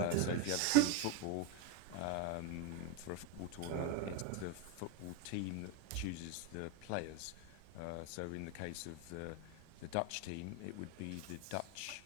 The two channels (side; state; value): both; different; correlation 0.03